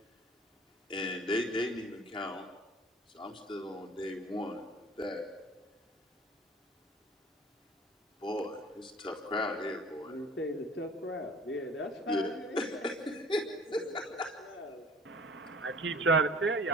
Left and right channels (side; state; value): both; normal; correlation 0.47